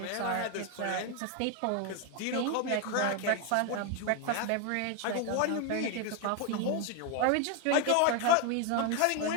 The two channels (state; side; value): different; both; correlation 0.01